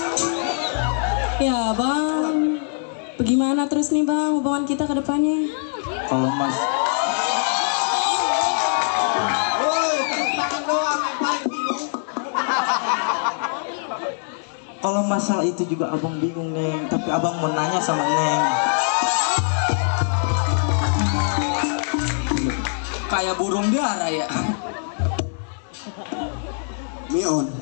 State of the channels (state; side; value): silent; right; digital silence